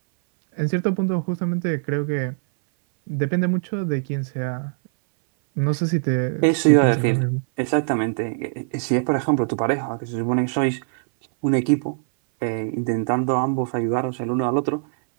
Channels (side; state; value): left; silent; 60 dB below the other